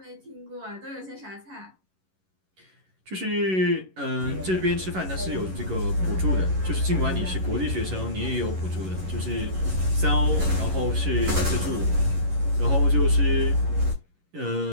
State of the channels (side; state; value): left; late; 11 ms